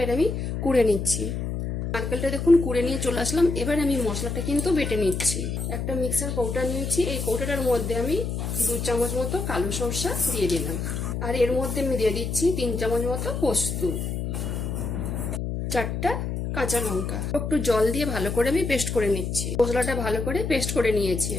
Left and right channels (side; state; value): left; noise; hum, 3 dB below the sound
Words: আমি কুড়ে নিচ্ছি। নারকেলটা দেখুন কুড়ে নিয়ে চলে আসলাম। এবার আমি মশলাটা কিন্তু বেটে নিচ্ছি। একটা মিক্সার কৌটা নিয়েছি, এই কৌটাটার মধ্যে আমি 2 চামচ মতো কালো সরষা দিয়ে দিলাম। আর এর মধ্যে আমি দিয়ে দিচ্ছি 3 চামচ মতো পোস্ত, 4টা কাঁচা লঙ্কা। একটু জল দিয়ে ভালো করে আমি পেস্ট করে নিচ্ছি। মশলাটা ভালো করে পেস্ট করে নিয়েছি।